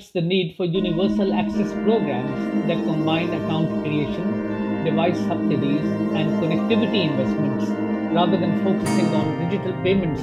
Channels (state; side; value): identical; both; correlation 1.00